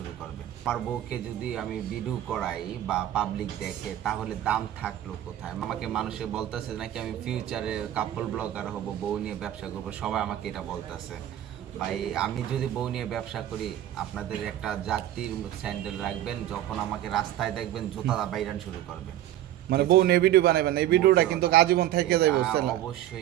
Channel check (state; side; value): quieter; left; 12.6 dB